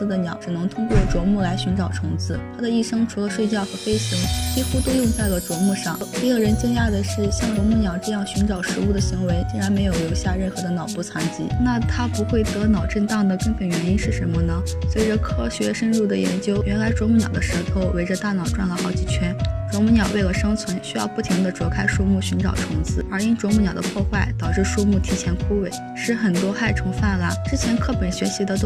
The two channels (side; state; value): both; identical; correlation 1.00